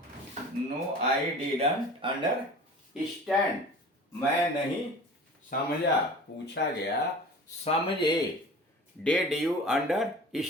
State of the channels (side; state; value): both; normal; correlation 0.40